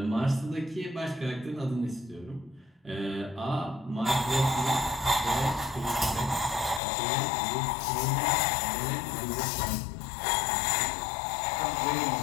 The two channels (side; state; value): right; drops out; at 6.8 s